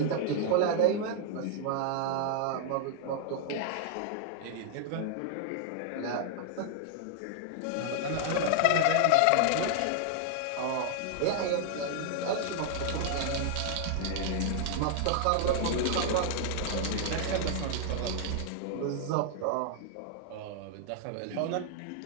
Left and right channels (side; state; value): both; different; correlation 0.00